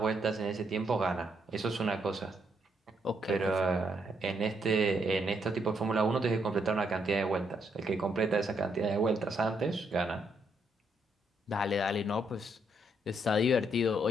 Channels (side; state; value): both; normal; correlation 0.75